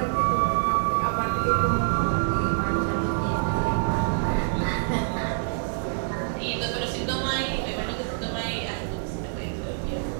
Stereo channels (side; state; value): left; silent; digital silence